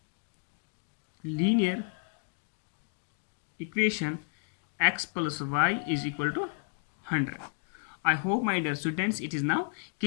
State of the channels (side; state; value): right; silent; 57 dB below the other